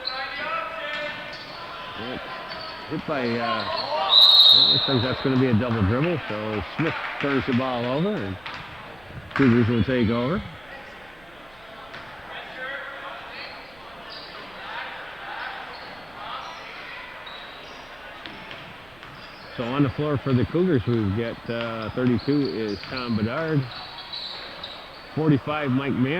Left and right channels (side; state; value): right; noise; rumble, 27 dB below the sound